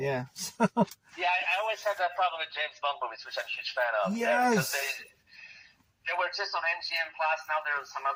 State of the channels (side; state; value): both; identical; correlation 1.00